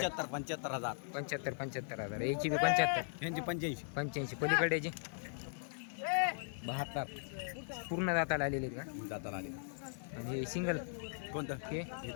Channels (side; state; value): right; silent; 52 dB below the other